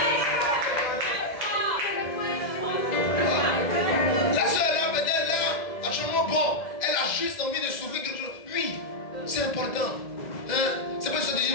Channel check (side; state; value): right; late; 2.0 ms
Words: La soeur là, peut-être là, franchement bon, elle a juste envie de souffrir quelque chose. Oui, c'est important. Hein? C'est pas ça de dire